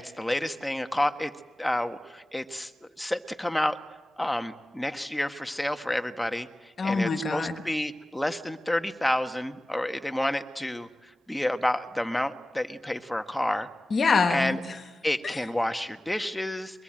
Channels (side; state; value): both; normal; correlation 0.96